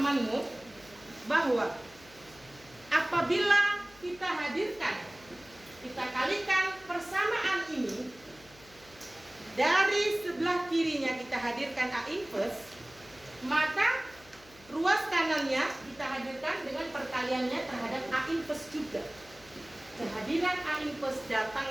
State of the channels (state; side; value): noise; left; hum, 24 dB below the sound